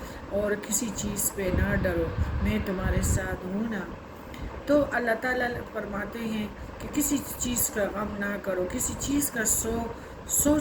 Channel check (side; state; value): both; identical; correlation 1.00